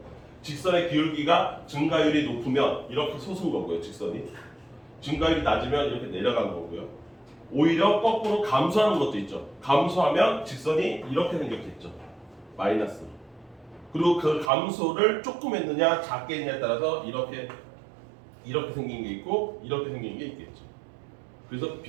직선의 기울기가 증가율이 높으면 이렇게 솟은 거고요. 직선이. 증가율이 낮으면 이렇게 내려간 거고요. 오히려 거꾸로 감소하는 것도 있죠. 감소하면 직선이 이렇게 생겼겠죠. 마이너스로. 그리고 그 감소를 조금 했느냐 작게 했느냐에 따라서 이렇게 생긴 게 있고 이렇게 생긴 게 있겠죠. 그래서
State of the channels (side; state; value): left; drops out; at 14.5 s